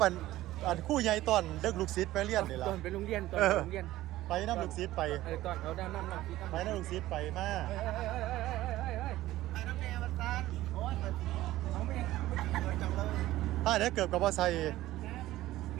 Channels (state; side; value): quieter; left; 15.8 dB